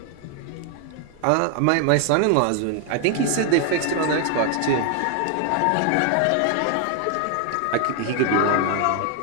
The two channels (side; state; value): both; different; correlation 0.00